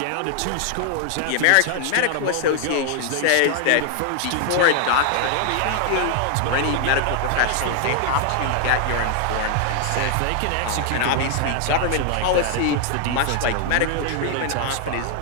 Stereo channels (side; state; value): both; different; correlation 0.00